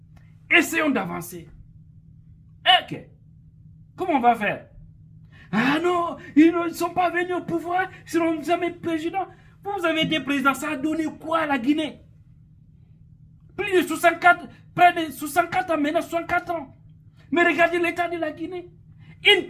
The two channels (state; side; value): identical; both; correlation 1.00